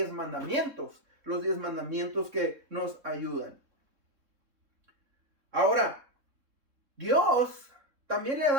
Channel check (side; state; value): left; late; 3.6 ms